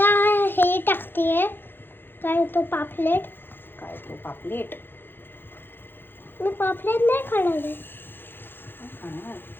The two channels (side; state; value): right; late; 0.10 ms